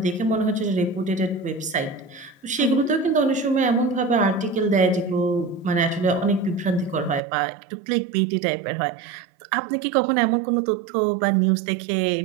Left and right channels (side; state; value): left; drops out; at 7.2 s